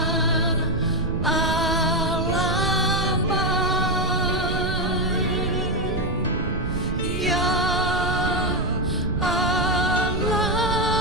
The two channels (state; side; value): noise; right; rumble, 4 dB below the sound